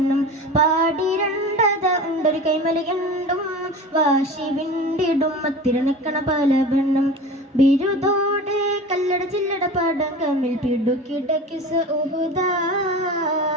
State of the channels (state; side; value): normal; both; correlation 0.34